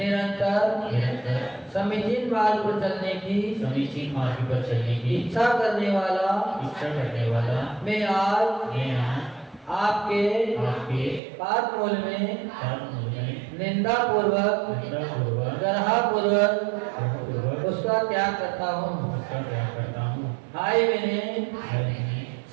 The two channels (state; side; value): drops out; left; at 11.2 s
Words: समीचीन मार्ग पर चलने की इच्छा करने वाला मैं आज आपके पाद मूल में निंदा पूर्वक गर्हा उसका त्याग करता हूँ। हाय मैंने